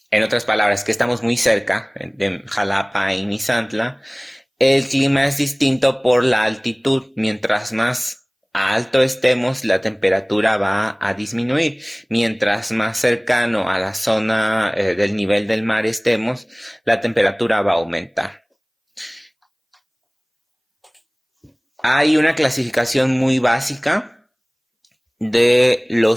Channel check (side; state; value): both; identical; correlation 1.00